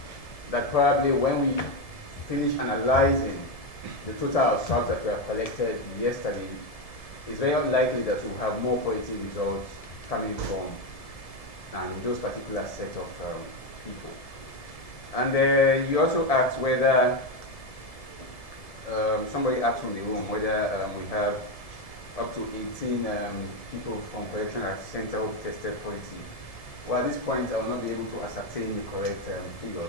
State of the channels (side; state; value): right; late; 1.7 ms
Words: that probably when we finish analyzing the total of swabs that were collected yesterday, it's very likely that we'll have more positive results coming from those particular set of people. And you also asked whether, somebody asked from the room whether we have up to 18 people from correctional center who tested positive. Well, at this point, I will not be able to ascertain the correct figures.